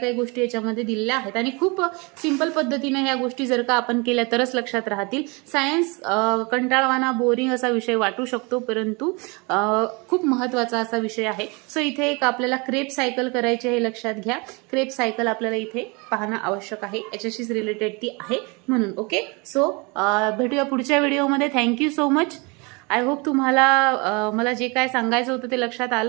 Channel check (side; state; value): left; quieter; 28.9 dB